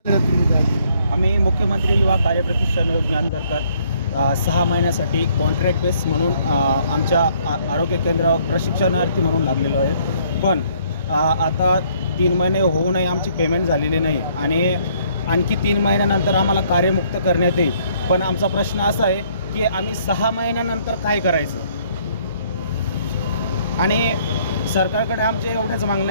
आम्ही मुख्यमंत्री युवा कार्यप्रशिक्षण योजनेअंतर्गत 6 महिन्यासाठी कॉन्ट्रॅक्ट बेस म्हणून आमच्या आरोग्य केंद्रावर प्रशिक्षणार्थी म्हणून लागलेलो आहे. पण आता 3 महिने होऊनही आमची पेमेंट झालेली नाही आणि आणखी 3 महिन्यानंतर आम्हाला कार्यमुक्त करण्यात येईल. पण आमचा प्रश्न असा आहे की आम्ही 6 महिन्यानंतर काय करायचं. आणि सरकारकडे आमचे एवढंच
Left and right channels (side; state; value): both; inverted; correlation -0.64